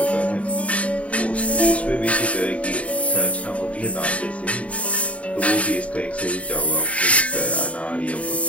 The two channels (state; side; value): late; right; 0.065 ms